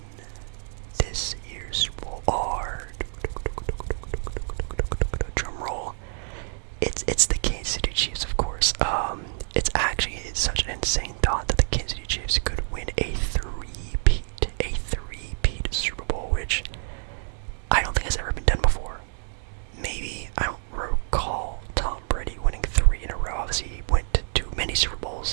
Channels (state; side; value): silent; left; 57 dB below the other